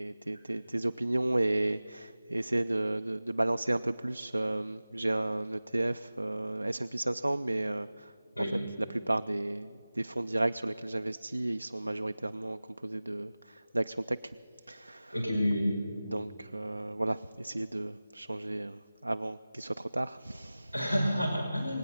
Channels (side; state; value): both; inverted; correlation -0.97